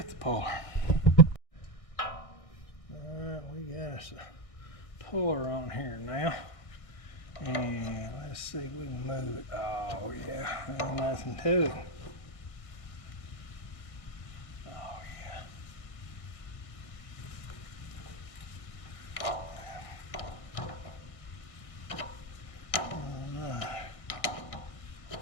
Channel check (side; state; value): right; late; 1.6 ms